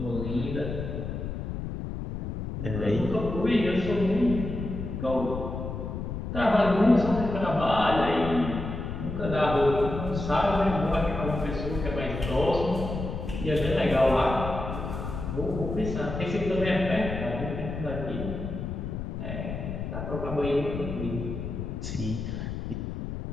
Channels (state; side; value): noise; left; rumble, 5 dB below the sound